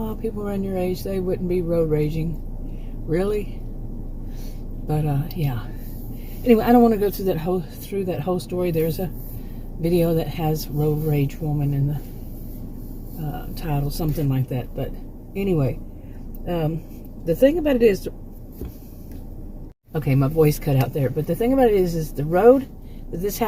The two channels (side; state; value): both; identical; correlation 1.00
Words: people around your age, they wouldn't be road raging. Really? But, yeah. Anyway, I don't want to go through that whole story. There's a video that has road rage woman in the title, something like that. But anyway, the thing about it is, okay, my voice cut out there. But the thing about it is the road that this